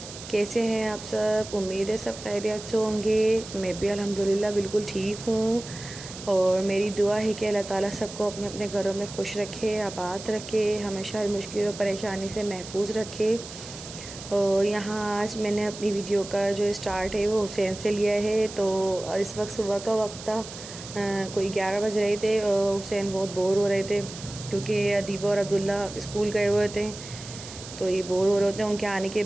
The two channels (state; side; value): noise; right; hiss, 13 dB below the sound